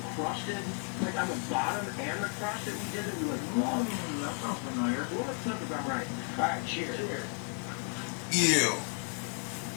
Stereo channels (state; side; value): quieter; right; 38.3 dB